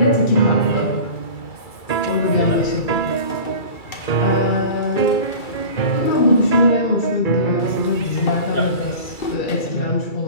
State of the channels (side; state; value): right; late; 2.3 ms